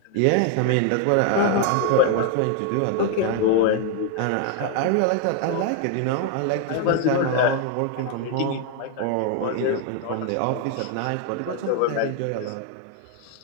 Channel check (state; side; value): different; both; correlation 0.00